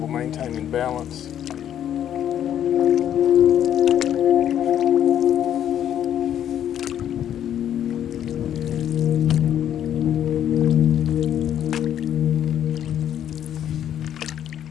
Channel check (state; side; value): quieter; right; 10.3 dB